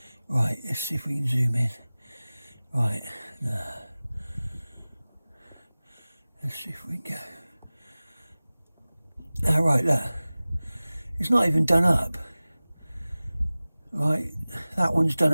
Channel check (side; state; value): both; inverted; correlation -0.98